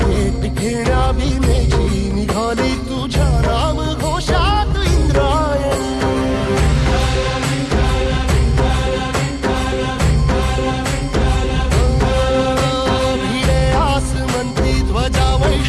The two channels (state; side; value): identical; both; correlation 1.00